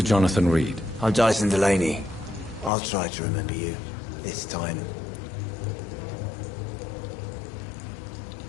Jonathan Reed. I'm Dyson Delaney. I'll try to remember you. This time.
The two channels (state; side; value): drops out; right; at 2.7 s